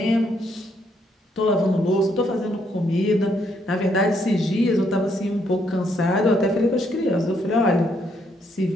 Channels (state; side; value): normal; both; correlation 0.73